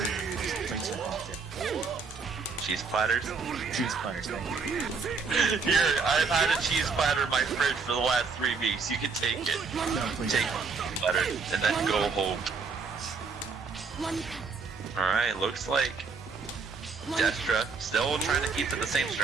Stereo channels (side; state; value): left; quieter; 4.9 dB